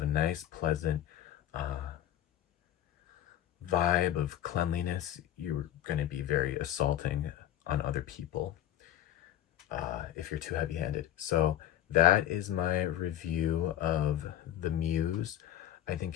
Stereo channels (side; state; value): right; quieter; 12.1 dB